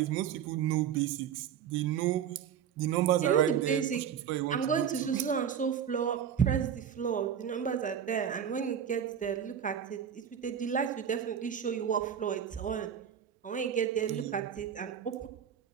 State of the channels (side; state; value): left; quieter; 8.5 dB